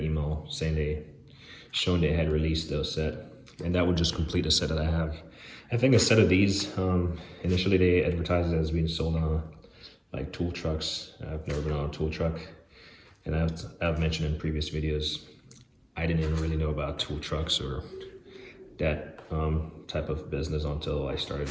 email saying showing they had released those set, and that would just complete a set that I have. I think a set of these, initially they advertised it as being sold on like tool trucks. I've never been on a tool truck, and I've mentioned in previous videos, I didn't even really know about tool trucks or that type of business until I started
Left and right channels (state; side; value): identical; both; correlation 1.00